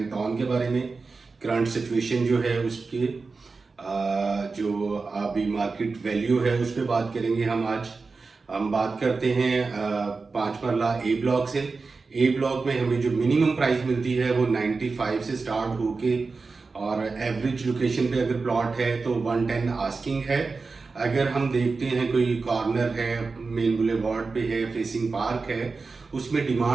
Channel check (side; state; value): left; quieter; 4.2 dB